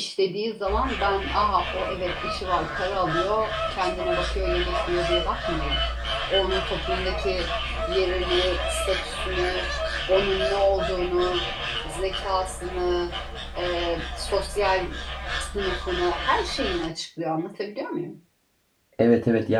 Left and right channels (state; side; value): identical; both; correlation 1.00